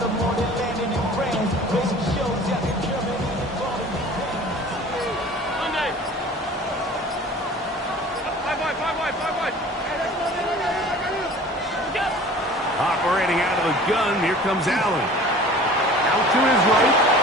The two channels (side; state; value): both; normal; correlation 0.44